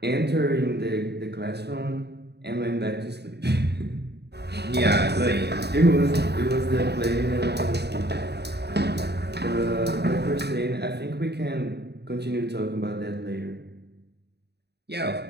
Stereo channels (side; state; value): left; late; 0.48 ms